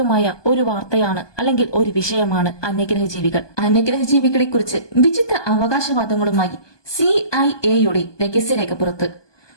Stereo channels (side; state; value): right; late; 1.2 ms